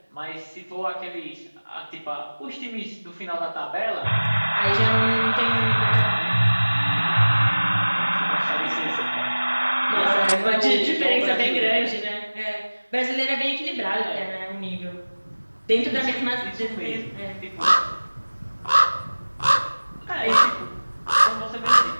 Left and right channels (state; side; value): inverted; both; correlation -1.00